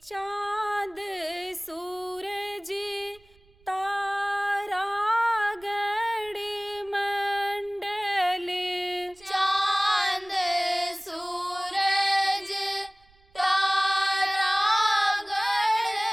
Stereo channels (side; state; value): right; noise; rumble, 29 dB below the sound